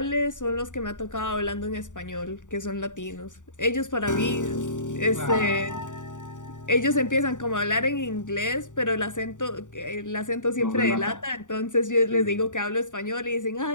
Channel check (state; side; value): late; right; 0.86 ms